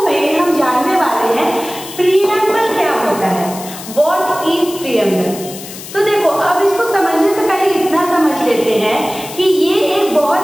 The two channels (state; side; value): noise; left; hiss, 13 dB below the sound